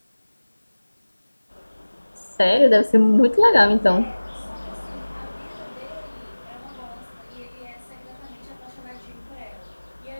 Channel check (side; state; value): both; inverted; correlation -1.00